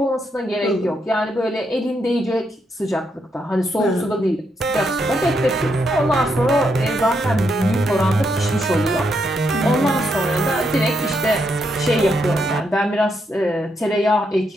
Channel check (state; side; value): normal; both; correlation 0.79